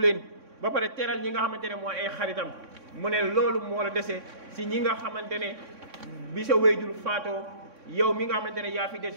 ba pare teral ñi nga xamante ne mooy ay xaritam mu ne loolu moo la dese si ñi nga xamante ne bi sa wayjur faatoo yow mi nga xamante ne yaa fi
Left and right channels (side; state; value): left; late; 3.6 ms